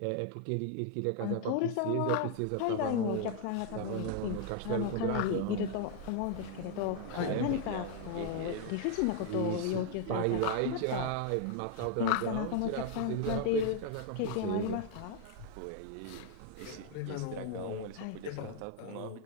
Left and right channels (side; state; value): both; different; correlation 0.00